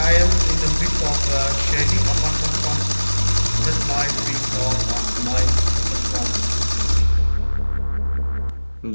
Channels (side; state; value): both; inverted; correlation -1.00